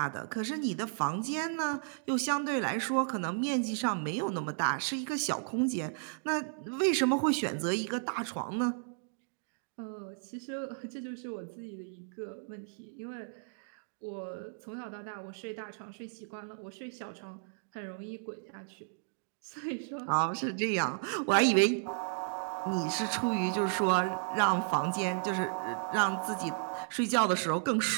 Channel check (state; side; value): silent; left; digital silence